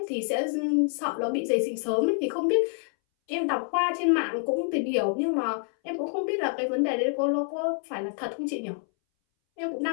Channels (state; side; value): silent; right; 60 dB below the other